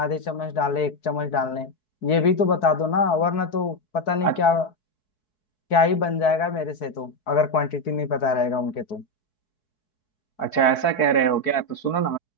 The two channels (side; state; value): right; late; 4.6 ms